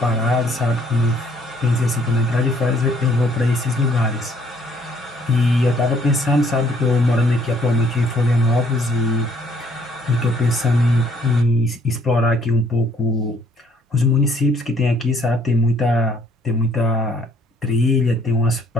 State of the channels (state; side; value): normal; both; correlation 0.63